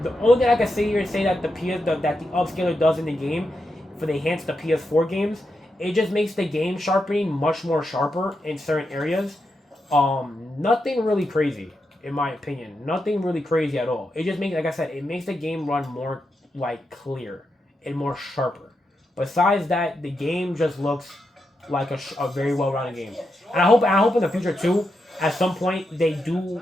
The only thing I can say here is say that the upscaler does in the game for the enhance the PS4 games, it just makes the game sharpening much more sharper in certain areas. Nothing really crazy in my opinion. Nothing really crazy at all. It just makes, like I said, it makes the game run more like clear and more sharper. Besides that, the game just looks like a very well-rounded game. And I hope in the future too, at some point they do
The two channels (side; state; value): both; normal; correlation 0.85